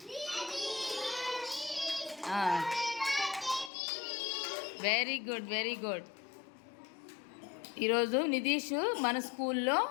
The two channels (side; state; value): right; drops out; at 3.7 s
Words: Very good, very good. ఈరోజు నిధీష్ మన స్కూల్లో